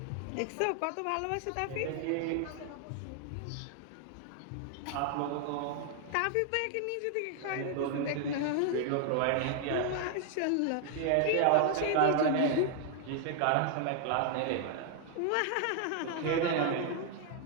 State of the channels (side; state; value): both; different; correlation 0.00